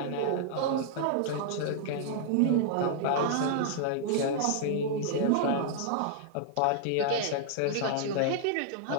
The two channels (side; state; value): both; different; correlation -0.01